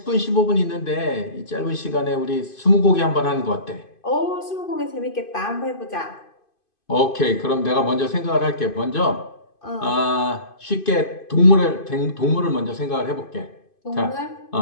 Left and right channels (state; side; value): late; right; 2.5 ms